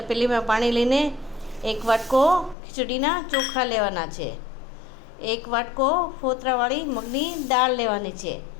પાણી લઈને એક વાટકો ખીચડીના ચોખા લેવાના છે. એક વાટકો ફોતરાવાળી મગની દાળ લેવાની છે.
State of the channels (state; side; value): drops out; right; at 2.6 s